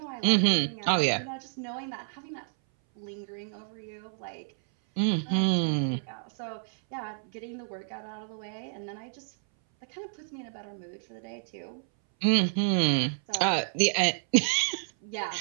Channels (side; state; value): left; silent; 58 dB below the other